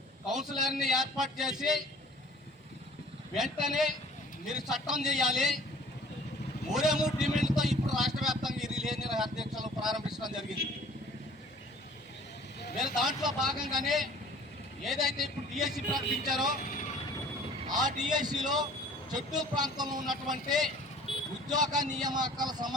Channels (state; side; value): normal; both; correlation 0.50